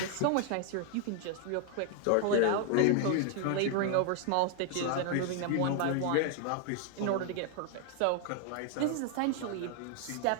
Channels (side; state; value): both; different; correlation 0.00